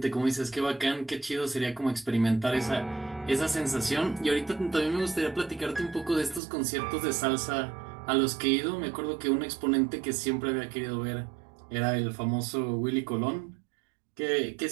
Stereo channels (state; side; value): drops out; left; at 6.4 s